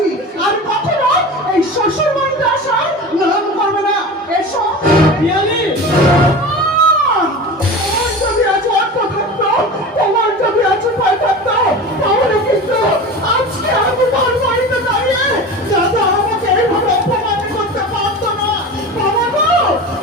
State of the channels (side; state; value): both; normal; correlation 0.32